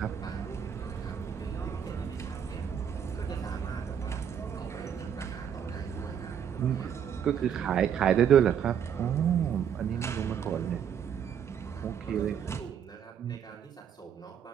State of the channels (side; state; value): left; quieter; 8.4 dB